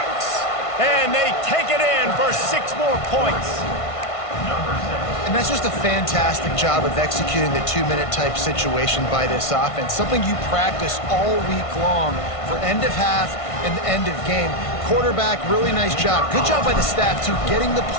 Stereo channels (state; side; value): late; right; 1.5 ms